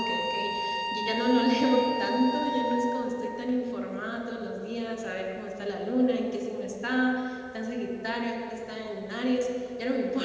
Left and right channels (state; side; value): identical; both; correlation 1.00